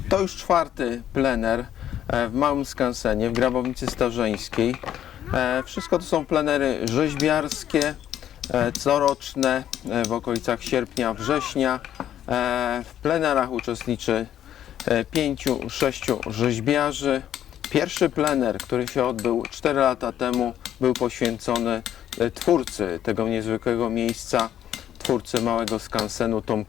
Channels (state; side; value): quieter; right; 10.9 dB